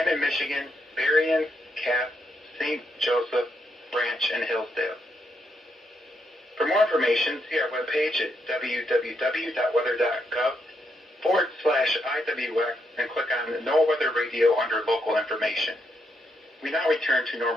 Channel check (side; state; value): both; normal; correlation 0.79